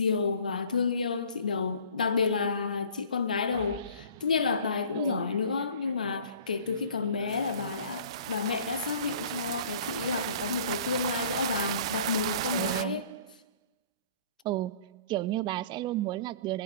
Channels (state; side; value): inverted; both; correlation -0.49